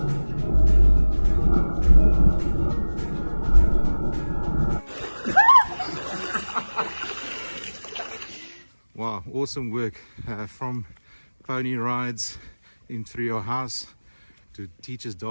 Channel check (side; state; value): both; inverted; correlation -1.00